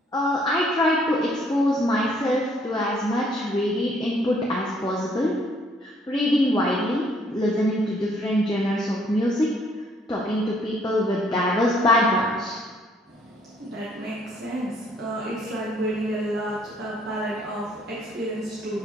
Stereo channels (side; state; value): both; normal; correlation 0.65